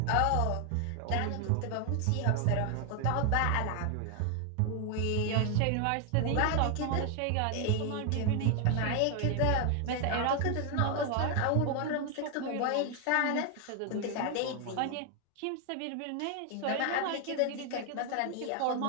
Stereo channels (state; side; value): different; both; correlation 0.00